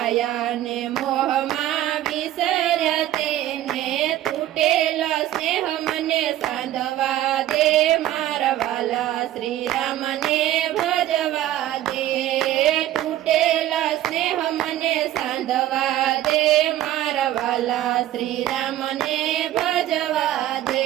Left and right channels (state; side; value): quieter; left; 13.5 dB